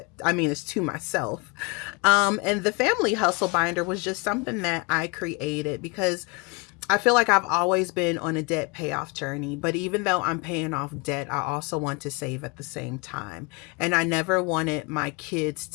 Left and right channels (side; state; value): right; quieter; 29.3 dB